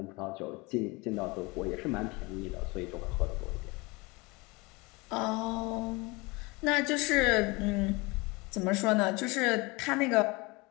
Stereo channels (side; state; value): right; quieter; 25.4 dB